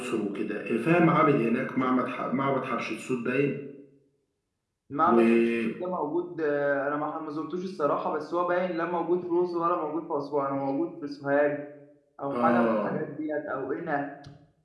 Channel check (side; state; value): both; identical; correlation 1.00